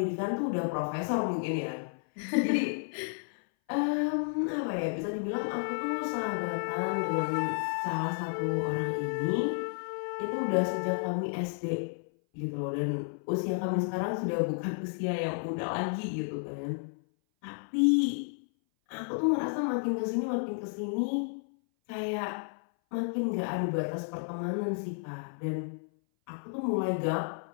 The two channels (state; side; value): silent; right; 57 dB below the other